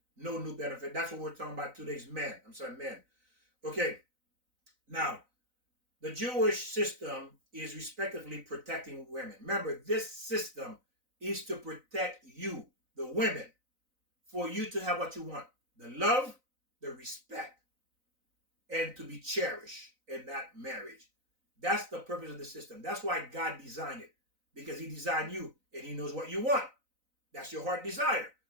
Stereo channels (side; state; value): left; late; 4.0 ms